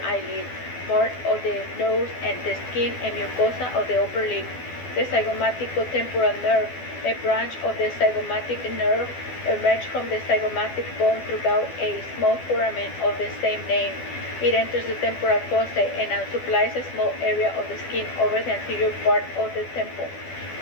eyelid, part of the nose, and the skin and mucosa of the upper lip. The zygomatico-temporal nerve, a branch of the zygomatic nerve, emerges from the zygomatic bone throughout a small foramen of the same name. It enters the temporal fossa and supplies a small area of the skin over the anterior part of the temple,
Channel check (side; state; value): right; late; 12 ms